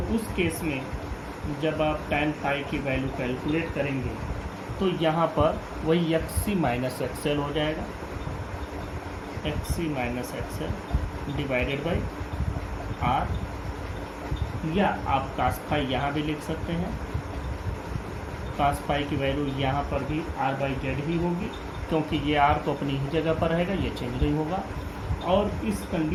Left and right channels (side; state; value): both; identical; correlation 1.00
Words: उस केस में जब आप tan फाई की वैल्यू कैलकुलेट करेंगे तो यहाँ पर वही XC माइनस XL हो जाएगा, XC minus XL divided by R। या आप cos फाई यहाँ भी लिख सकते हैं, cos फाई की वैल्यू यहाँ पर भी R बाई जेड ही होगी, क्योंकि ये R तो अपनी ही जगह पर रहेगा, ये चेंज नहीं होगा। और इस